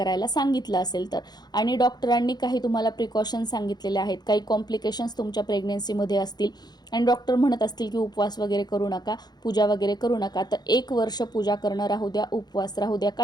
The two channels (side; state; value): right; late; 0.20 ms